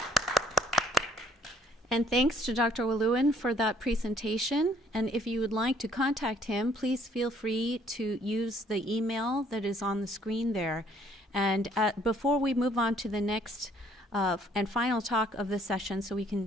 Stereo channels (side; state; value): both; normal; correlation 0.62